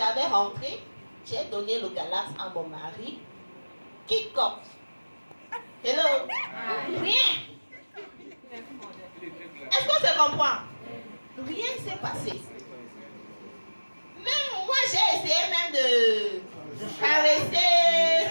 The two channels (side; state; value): both; inverted; correlation -1.00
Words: rentré, j'ai donné le Galax à mon mari. Kick-off. Hello? Rien. Est-ce qu'on se comprend? Rien ne s'est passé. Même moi, j'ai essayé même de caresser.